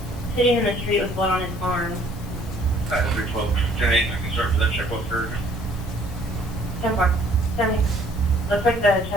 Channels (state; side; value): normal; both; correlation 0.59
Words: sitting in the street with blood on his arm. 312, 10-8, I can start for that check off for 10-4. 70. Looks like the